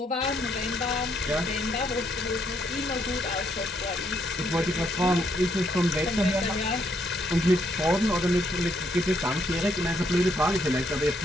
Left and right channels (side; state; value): both; normal; correlation 0.73